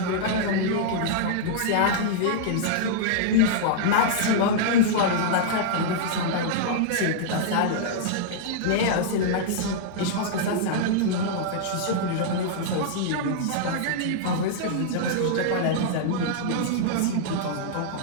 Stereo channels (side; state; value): both; different; correlation -0.02